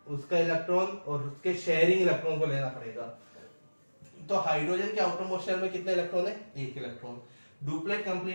उसका इलेक्ट्रॉन और उसके शेयरिंग इलेक्ट्रॉन को लेना पड़ेगा। तो हाइड्रोजन के आउटर मोस्ट शेल में कितने इलेक्ट्रॉन है, 1 इलेक्ट्रॉन। डुप्लेट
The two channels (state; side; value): inverted; both; correlation -1.00